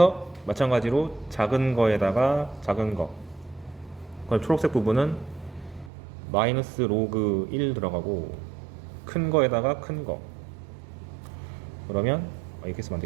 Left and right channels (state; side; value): drops out; left; at 5.9 s